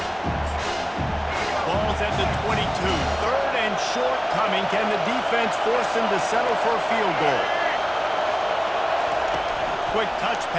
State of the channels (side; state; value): both; identical; correlation 1.00